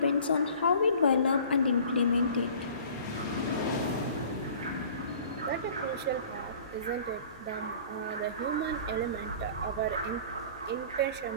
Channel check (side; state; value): both; inverted; correlation -0.46